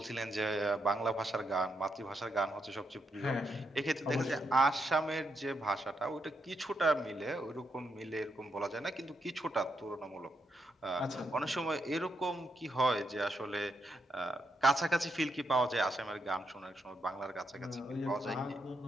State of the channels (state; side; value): normal; both; correlation 0.80